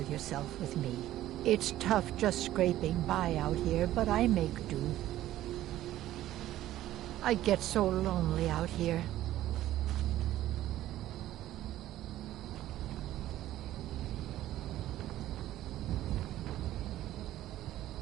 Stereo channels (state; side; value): quieter; left; 13.9 dB